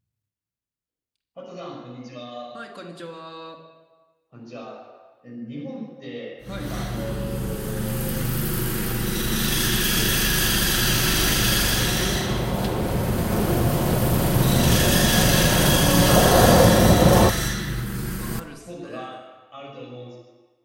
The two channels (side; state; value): both; identical; correlation 1.00